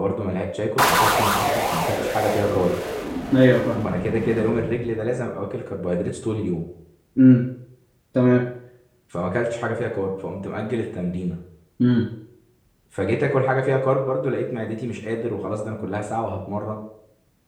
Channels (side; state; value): both; identical; correlation 1.00